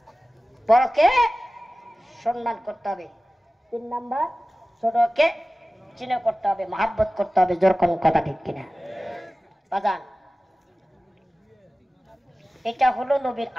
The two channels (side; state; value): both; normal; correlation 0.96